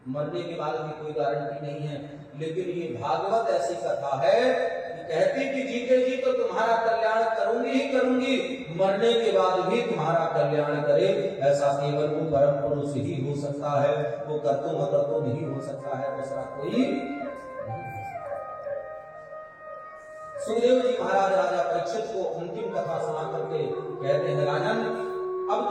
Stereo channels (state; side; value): identical; both; correlation 1.00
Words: मरने के बाद भी कोई गारंटी नहीं है। लेकिन ये भागवत ऐसी कथा है कि कहती कि जीते जी तो तुम्हारा कल्याण करूंगी ही करूंगी, मरने के बाद भी तुम्हारा कल्याण करे। ऐसा केवल वो परम पुरुष ही हो सकता है, वो कर्तुम अकर्तुम नहीं हो सकता है, दूसरा कोई। सुखदेव जी महाराज राजा परीक्षित को अंतिम कथा सुना करके कहते हैं, राजन अब